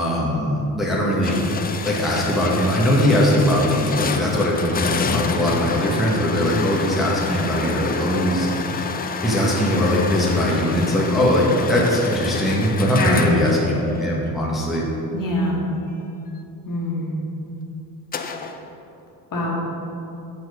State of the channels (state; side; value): normal; both; correlation 0.42